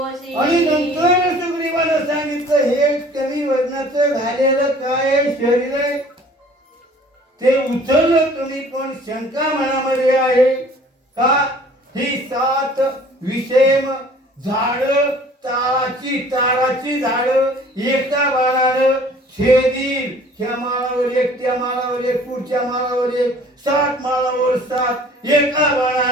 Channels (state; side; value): normal; both; correlation 0.51